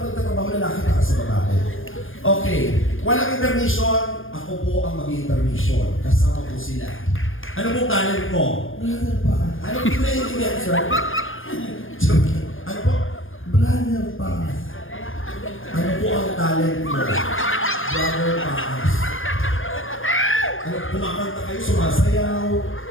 nagtatrabaho, lalaki ka sa babae. Okay, walang intermission, ako po ang mag-intermission. Kasama po sila. Ano pong talent mo? Brother pa. Ano po naiintindihan, sir? Ano po? Brother pa. Ano po ang talent mo? Brother Paas. Ano, kumakanta kayo, sumasayaw?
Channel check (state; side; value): late; right; 0.59 ms